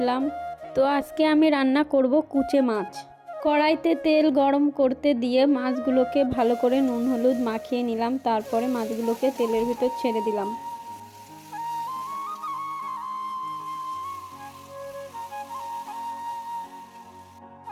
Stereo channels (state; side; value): identical; both; correlation 1.00